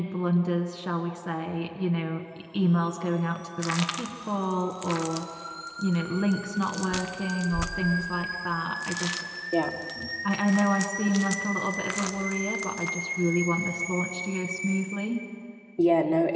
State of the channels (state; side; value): identical; both; correlation 1.00